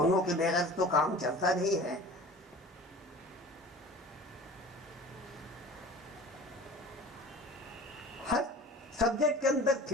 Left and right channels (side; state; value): both; normal; correlation 0.41